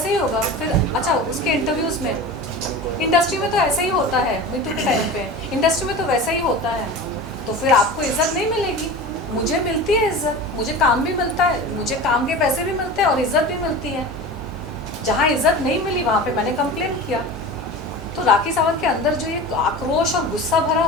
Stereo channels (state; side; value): normal; both; correlation 0.32